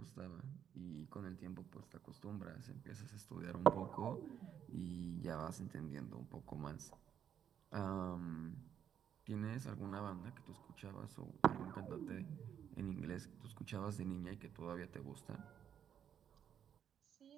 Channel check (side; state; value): left; quieter; 9.0 dB